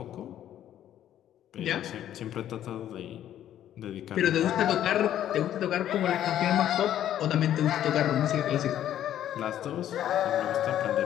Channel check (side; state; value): right; quieter; 11.3 dB